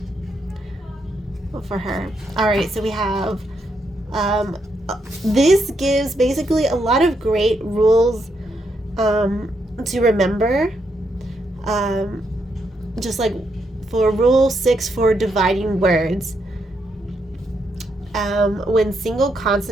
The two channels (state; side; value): normal; both; correlation 0.79